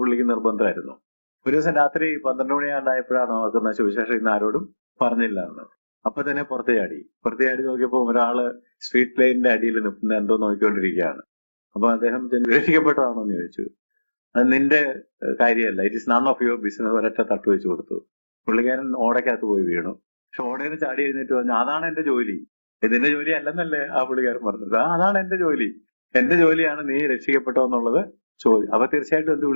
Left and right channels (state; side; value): inverted; both; correlation -1.00